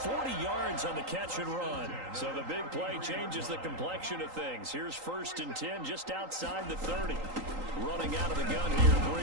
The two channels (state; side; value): late; left; 3.8 ms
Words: yards on the catch and run. So the big play changes the complexion of things. Here's 1st and 10 just outside the 30. Running out of the gun here,